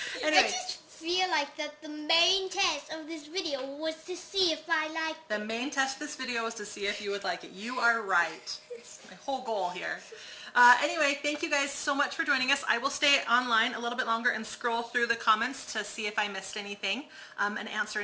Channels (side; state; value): both; identical; correlation 1.00